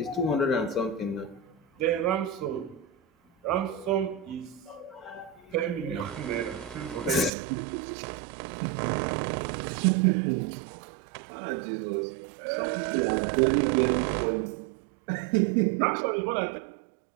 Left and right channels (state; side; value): drops out; left; at 7.3 s